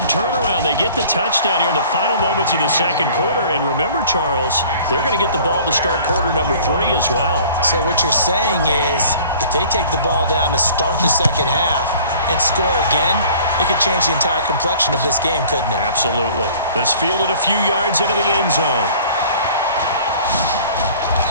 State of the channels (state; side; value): inverted; both; correlation -0.50